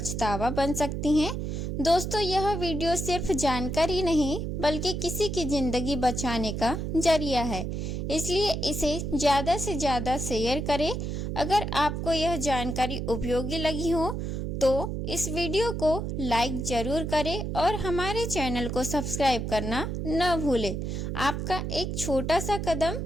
बन सकती है। दोस्तों, यह वीडियो सिर्फ जानकारी नहीं बल्कि किसी की ज़िंदगी बचाने का जरिया है, इसलिए इसे ज़्यादा से ज़्यादा शेयर करें। अगर आपको यह जानकारी उपयोगी लगी हो तो इस वीडियो को लाइक ज़रूर करें और हमारे चैनल को सब्सक्राइब करना न भूलें। आपका एक छोटा सा कदम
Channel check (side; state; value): right; noise; hum, 3 dB below the sound